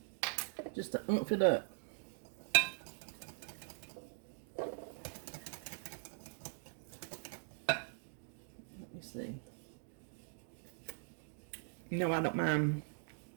Just to oomph it up. Let me see. You know I don't mind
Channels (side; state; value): left; silent; digital silence